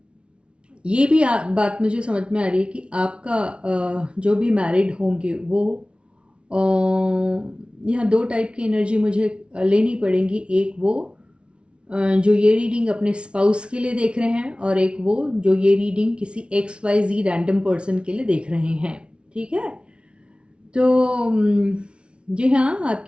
ये भी बात मुझे समझ में आ रही है कि आपका जो भी मैरिड होंगे वो यहाँ दो टाइप की एनर्जी मुझे लेनी पड़ेंगी। एक वो जो ये रीडिंग अपने स्पाउस के लिए देख रहे हैं और एक वो जो ये रीडिंग किसी XYZ रैंडम पर्सन के लिए देख रहे हैं, ठीक है। तो जी हाँ,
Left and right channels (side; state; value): left; late; 0.058 ms